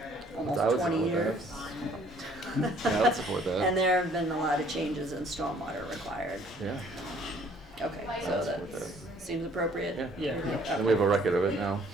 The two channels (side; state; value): both; normal; correlation 0.59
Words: almost I would 20 support that. years. Yeah, I would support that. And there have been a lot of changes in stormwater required. Yeah. Okay, so that seems appropriate? Yeah. Yeah. And we have a record of it now.